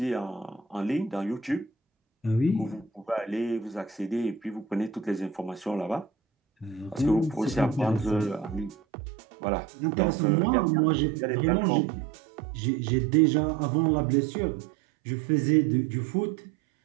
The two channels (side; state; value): left; drops out; at 8.8 s